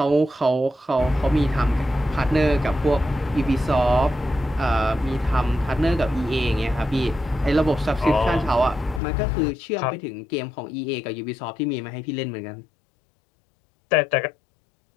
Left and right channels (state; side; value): drops out; right; at 9.0 s